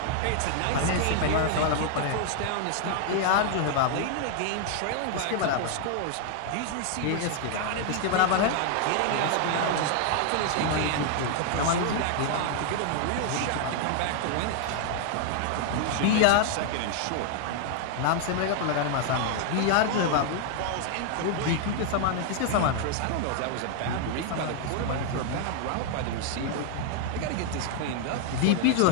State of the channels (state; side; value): different; both; correlation 0.00